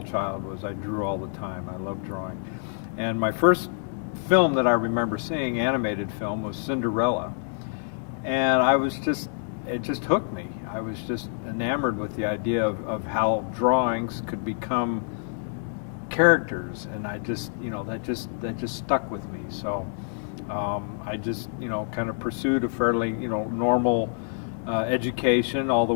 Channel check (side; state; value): right; silent; digital silence